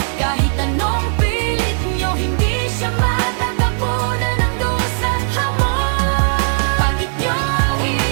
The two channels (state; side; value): silent; left; 68 dB below the other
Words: Kahit anong pilit nyo, hindi siya matatapunan ng dusa't hamon. Bakit nyo